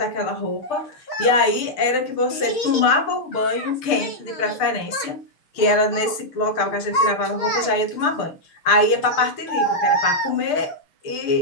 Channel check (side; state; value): right; late; 6.6 ms